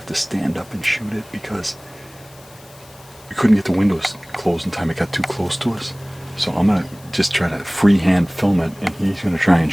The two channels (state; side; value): noise; left; hiss, 24 dB below the sound